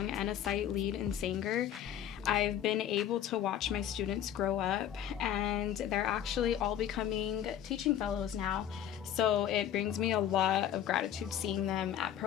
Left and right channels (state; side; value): quieter; right; 10.5 dB